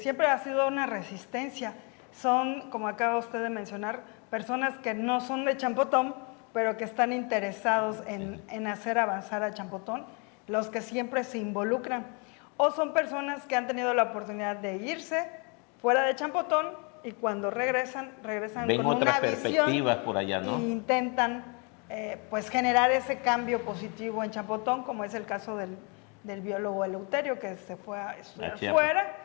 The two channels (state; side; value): quieter; right; 33.9 dB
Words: ha sido una resistencia. Son, como acaba usted de mencionar, personas que no son de Champotón, pero que están interesados en hacer avanzar a Champotón, los que siempre se involucran. O son personas que han tenido la oportunidad de irse fuera de Champotón, y cuando regresan Ven con otras una visión perspectivas por allá, ¿no? e intentan pues generar ese cambio positivo en Champotón, como es el caso del biólogo Eleuterio, que se fue a estudiar fuera